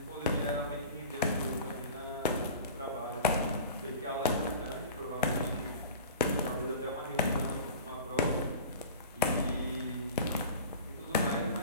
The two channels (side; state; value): both; inverted; correlation -0.38